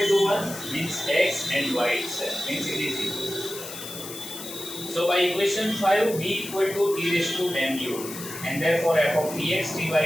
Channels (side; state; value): left; noise; hiss, 11 dB below the sound